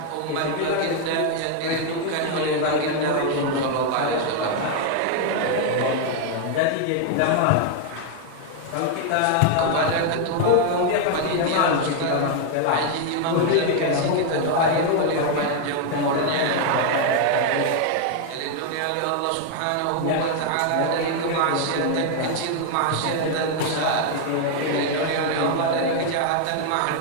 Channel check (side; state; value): both; different; correlation 0.00